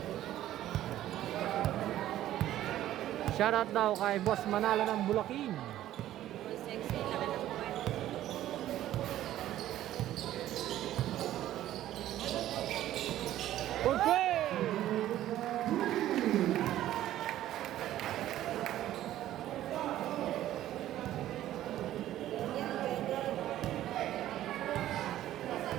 Shoutout daw kay Boss Manalo ng Bulacan. Sexy, laki ng buwan. Okay.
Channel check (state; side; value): quieter; left; 13.2 dB